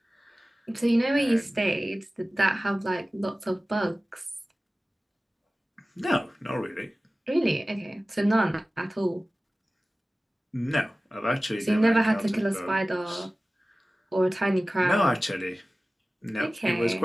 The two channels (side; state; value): both; normal; correlation 0.97